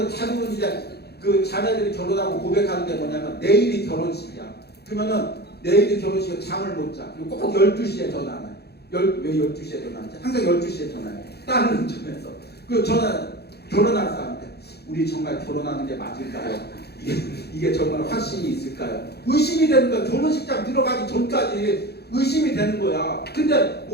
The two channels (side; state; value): right; late; 0.47 ms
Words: 자기는 이제 그 자매들이 결혼하고 고백하는 게 뭐냐면 내일이 결혼식이야. 그러면은 내일이 결혼식에 잠을 못 자. 그리고 꼭 12시에 전화해. 왜 12시에 전화하지? 항상 12시에 전화해요. 다른 운전에서. 그 저는 결혼한 사람인데 우리 정말 결혼하는 게 맞을까요? 이게 정말 확신이 있을까요? 의심이 되는 거야. 결혼식장 들어가기 전까지 의심이 되는 거야. 근데